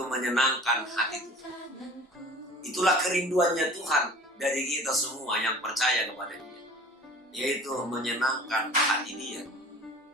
menyenangkan hati Tuhan. Itulah kerinduannya Tuhan dari kita semua yang percaya kepada Dia, yaitu menyenangkan hati Dia.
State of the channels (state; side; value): normal; both; correlation 0.44